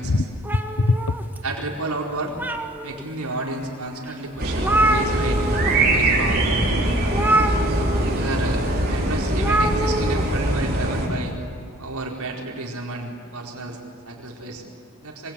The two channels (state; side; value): normal; both; correlation 0.56